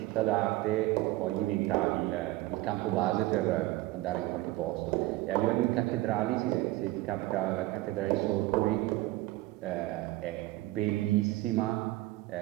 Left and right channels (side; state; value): left; quieter; 18.2 dB